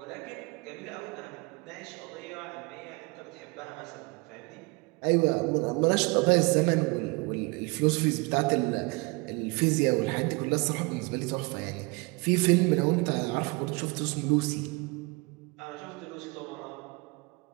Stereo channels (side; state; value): left; quieter; 27.3 dB